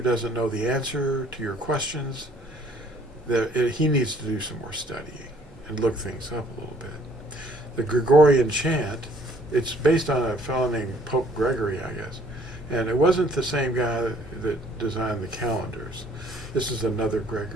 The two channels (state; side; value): normal; both; correlation 0.59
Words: doesn't know the answer to your questions, he needs to do some more studying and look things up a little bit. The Gregorian chant, it's based on a fellow named Pope Gregory, I guess. And it wasn't the same guy that designed the calendars. This is another